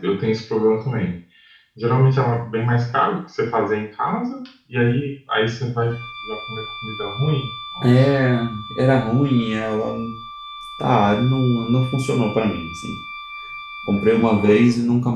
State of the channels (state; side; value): identical; both; correlation 1.00